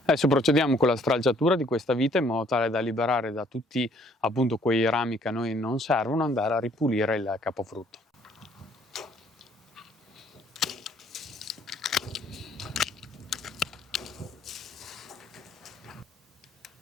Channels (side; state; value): both; normal; correlation 0.62